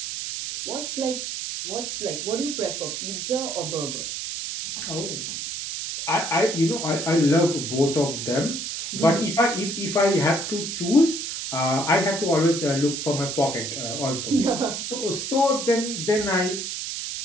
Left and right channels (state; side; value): noise; right; hiss, 5 dB below the sound